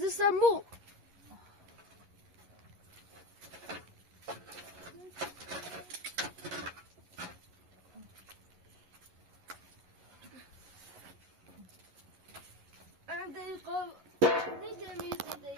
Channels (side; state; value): left; late; 11 ms